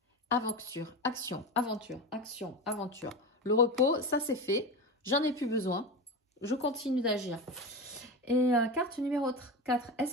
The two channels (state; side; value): normal; both; correlation 0.23